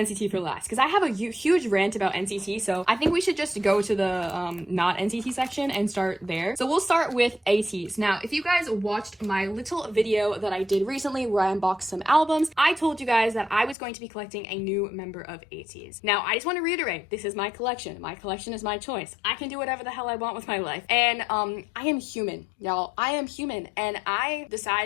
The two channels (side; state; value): right; drops out; at 13.8 s